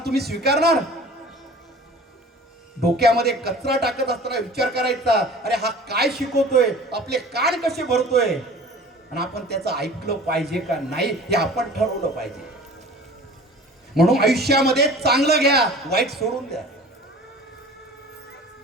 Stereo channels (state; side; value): normal; both; correlation 0.43